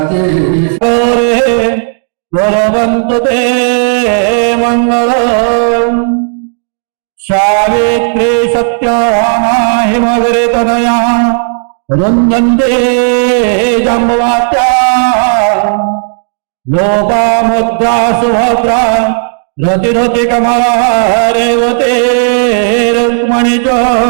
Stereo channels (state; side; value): silent; left; 72 dB below the other